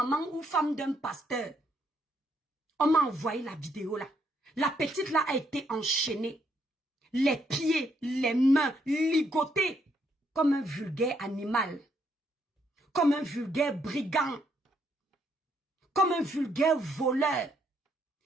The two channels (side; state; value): both; normal; correlation 0.73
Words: ou femme d'un pasteur. On m'a envoyé la vidéo là. La petite là a été enchaînée. Les pieds, les mains ligotés comme un vulgaire animal. Comme un vulgaire brigand. Comme un vulgaire voleur.